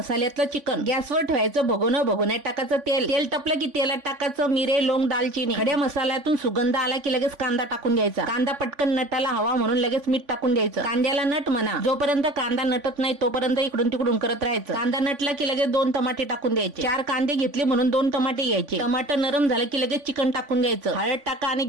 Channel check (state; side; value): late; left; 3.5 ms